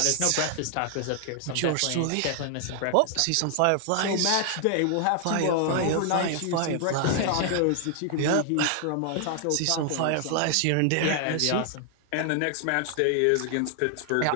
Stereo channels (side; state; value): both; different; correlation 0.00